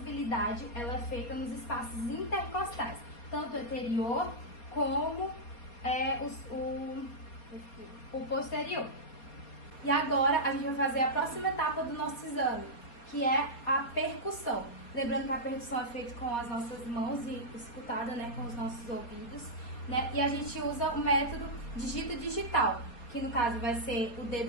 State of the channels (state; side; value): late; right; 4.3 ms